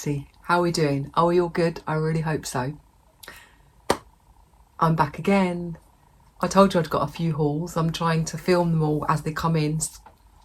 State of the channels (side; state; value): both; identical; correlation 1.00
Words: How are we doing? Are we all good? I really hope so. I'm back again. I told you I'd got a few hauls. I'm trying to film them all as they come in